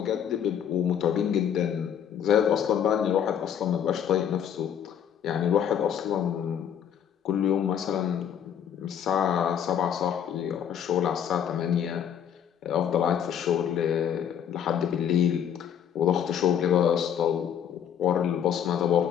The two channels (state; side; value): quieter; right; 9.0 dB